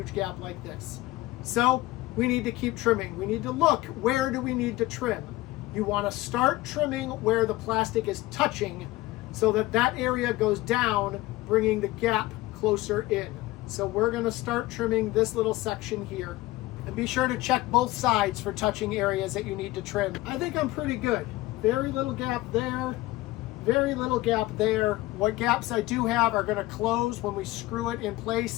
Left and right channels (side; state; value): right; quieter; 18.3 dB